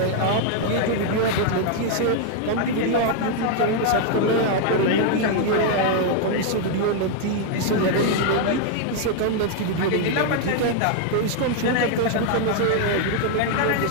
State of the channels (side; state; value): both; different; correlation 0.00